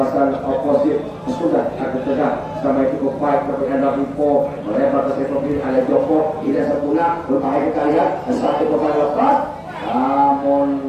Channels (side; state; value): both; identical; correlation 1.00